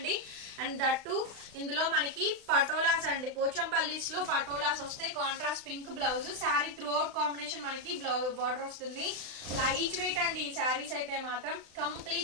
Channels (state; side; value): late; left; 35 ms